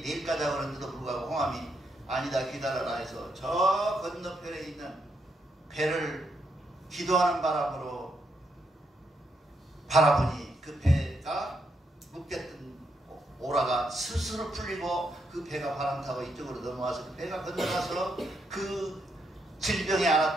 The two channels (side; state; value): both; normal; correlation 0.78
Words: 내일 가자고 그러는데도 불구하고 홍암이 아니다 기다려라 해서 저 건너편에 있는 배를 기도하는 바람으로 바라보니 그 배가 묶였던 오라가 스스로 풀리고 그 배가 바람 타고 이쪽으로 넘어와서 그 배가 건너가서 그 질병에